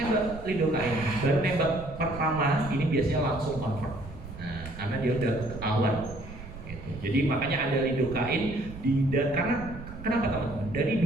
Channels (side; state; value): right; noise; rumble, 13 dB below the sound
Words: lidocaine. Baru tembak pertama ini biasanya langsung convert. Nah, karena dia udah ketahuan. Jadi makanya ada lidocaine karena kenapa teman-teman? Dari